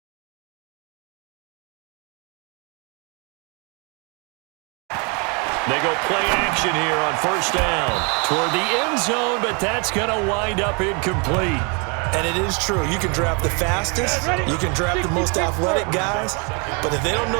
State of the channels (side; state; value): left; quieter; 33.0 dB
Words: They go play action here on first down toward the end zone, but that's going to wind up incomplete. And it is true. You can draft the fastest, you can draft the most athletic guys, but if they don't